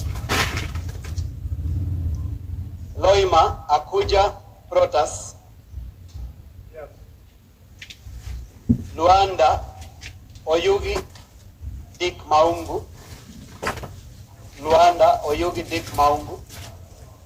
Loima Akuja Protas. Luanda Oyugi Dick Maungu. Luanda Oyugi Dick Maungu.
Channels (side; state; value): both; identical; correlation 1.00